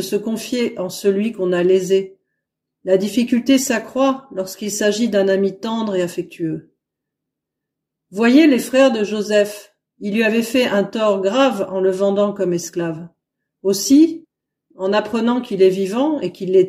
se confier en celui qu'on a lésé. La difficulté s'accroît lorsqu'il s'agit d'un ami tendre et affectueux. Voyez les frères de Joseph, ils lui avaient fait un tort grave en le vendant comme esclave. Aussi, en apprenant qu'il est vivant et qu'il les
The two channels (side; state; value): both; identical; correlation 1.00